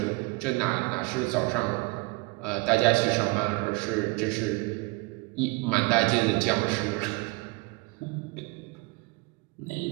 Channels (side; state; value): left; quieter; 27.2 dB